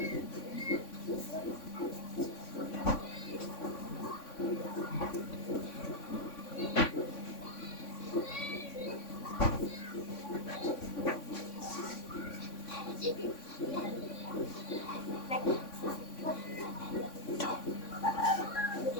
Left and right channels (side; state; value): right; late; 3.5 ms